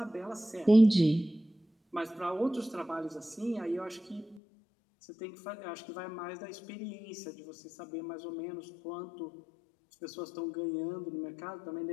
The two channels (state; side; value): drops out; right; at 4.4 s